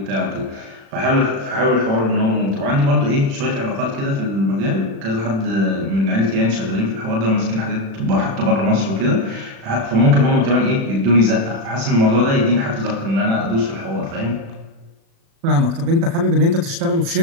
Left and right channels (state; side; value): late; left; 36 ms